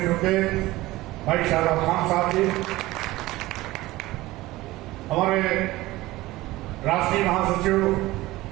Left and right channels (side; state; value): left; quieter; 18.4 dB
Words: रुके भाई शाहरुख खान साहब जी, हमारे राष्ट्रीय महासचिव